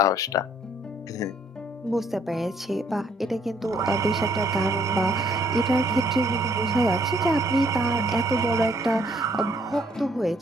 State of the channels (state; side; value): normal; both; correlation 0.65